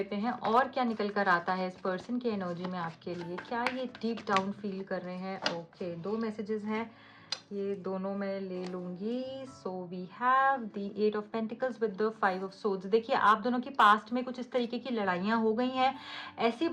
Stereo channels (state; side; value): identical; both; correlation 1.00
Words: हैं और क्या निकल कर आता है इस पर्सन की एनर्जी में आपके लिए। क्या ये डीप डाउन फील कर रहे हैं? ओके, 2 मैसेजेस हैं, ये दोनों मैं ले लूंगी। So we have the 8 of pentacles with the 5 of swords. देखिए आप दोनों की पास्ट में कुछ इस तरीके की लड़ाइयाँ हो गई हैं, ऐसी